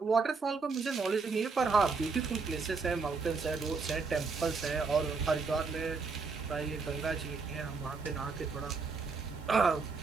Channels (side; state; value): left; quieter; 4.6 dB